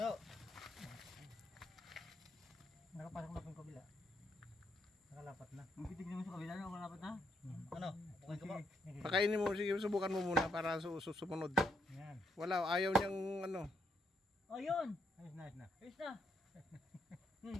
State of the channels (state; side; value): normal; both; correlation 0.75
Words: Nakapasok na po yung kabila. Nakalapat na. Magtitignan mo sa kabila na ako dapat na. Ano? Okay ka ba? Sige. Pakainin mo, sige, subukan mo muna para sumunod. Yan. Wala, ayaw niyang ano. Oh, yun. Ayos na, ayos na. Ayos na.